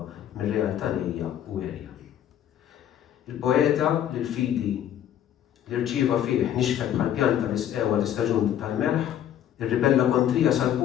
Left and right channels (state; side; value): quieter; right; 10.6 dB